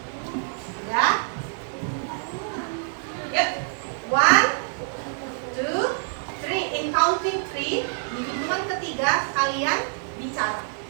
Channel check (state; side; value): silent; left; 57 dB below the other